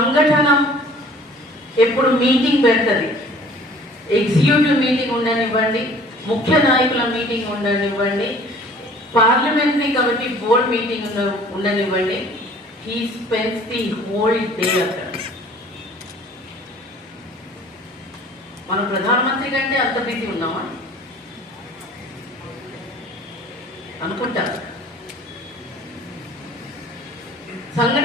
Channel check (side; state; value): both; normal; correlation 0.51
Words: ఎప్పుడు మీటింగ్ పెడుతుంది, ఎగ్జిక్యూటివ్ మీటింగ్ ఉండనివ్వండి, ముఖ్య నాయకుల మీటింగ్ ఉండనివ్వండి, పార్లమెంటరీ కమిటీ బోర్డ్ మీటింగ్ ఉండనివ్వండి, he spends the whole day అక్కడ. మనం ప్రధానమంత్రి కంటే అంత బిజీ ఉన్నామా అనుకుంటా.